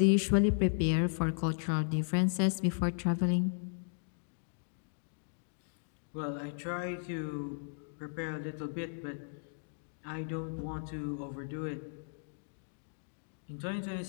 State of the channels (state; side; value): silent; right; digital silence